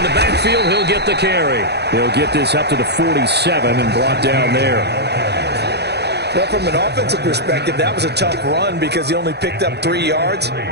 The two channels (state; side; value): late; left; 0.48 ms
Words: the backfield, he'll get the carry. He'll get this up to the 47 and brought down there. Well, from an offensive perspective, that was a tough run because he only picked up 3 yards.